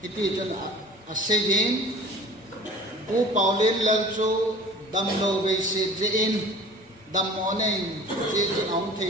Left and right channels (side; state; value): both; normal; correlation 0.44